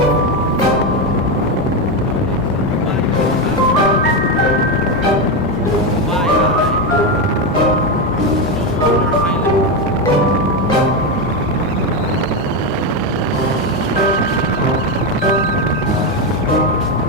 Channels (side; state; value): both; normal; correlation 0.10